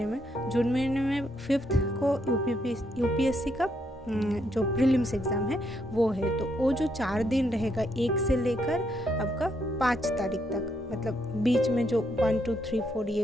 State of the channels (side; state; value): both; normal; correlation 0.75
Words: में 5th को यूपीएससी का जो प्रीलिम्स एग्ज़ाम है वो है। तो वो जो 4 दिन रहेगा, 1 से लेकर आपका 5 तारीख तक, मतलब बीच में जो 1 2 3 4 ये